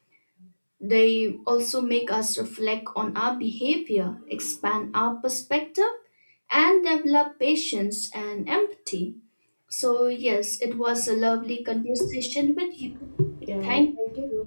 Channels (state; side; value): inverted; both; correlation -1.00